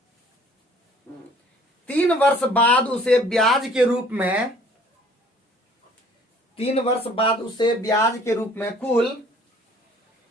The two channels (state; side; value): normal; both; correlation 0.55